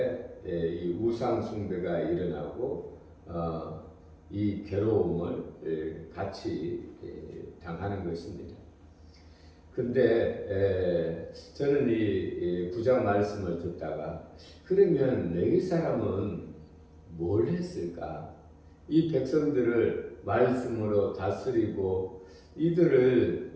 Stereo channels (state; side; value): identical; both; correlation 1.00